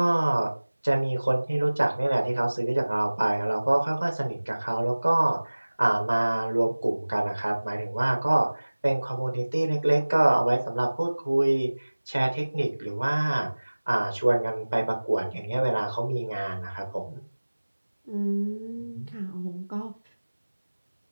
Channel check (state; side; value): inverted; both; correlation -1.00